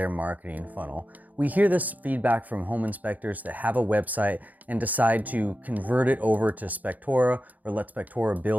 marketing funnel. We hear this feedback from home inspectors that have a website and decide to convert it over to Spectora or let Spectora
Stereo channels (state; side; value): late; left; 0.079 ms